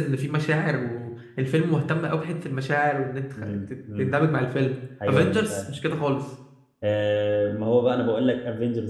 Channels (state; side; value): identical; both; correlation 1.00